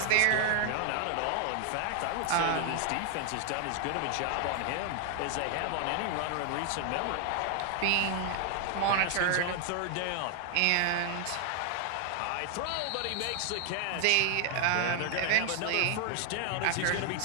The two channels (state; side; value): different; both; correlation 0.00